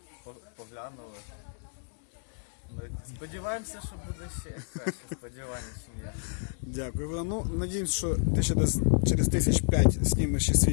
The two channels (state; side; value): silent; right; 58 dB below the other